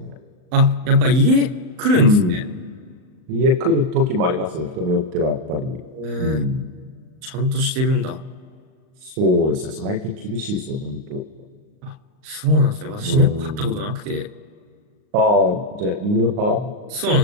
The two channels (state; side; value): late; left; 39 ms